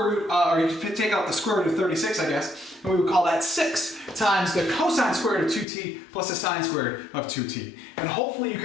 root, or you could take out the square root of 36, I guess, and we would call that 6 times the cosine squared of 2t plus the sine squared of 2t. And hopefully you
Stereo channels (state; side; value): drops out; right; at 5.7 s